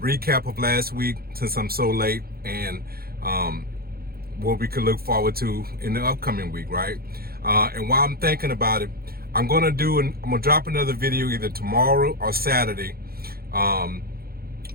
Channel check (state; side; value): late; left; 0.44 ms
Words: of last week, since I'm so late, and what we could look forward to in the upcoming week, right? And while I'm thinking about it, I'm gonna drop another video either tomorrow or Saturday,